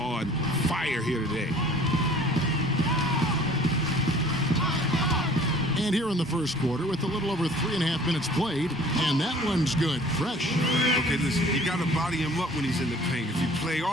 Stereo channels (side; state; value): both; normal; correlation 0.50